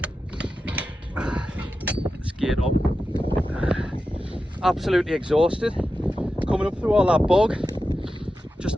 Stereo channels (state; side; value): normal; both; correlation 0.91